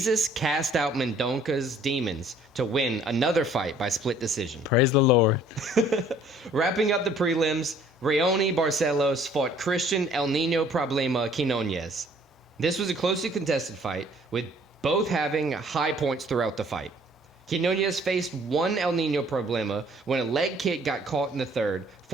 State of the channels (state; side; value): normal; both; correlation 0.57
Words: cast out Mendonca's demons to win another fight by split decision. Praise the Lord. Wrapping up the prelims, Raoni Barcelos fought Christian El Nino Problema Quinones. This was a closely contested fight, with both having high points throughout the fight. Quinones faced one El Nino Problema when a leg kick got caught in the third,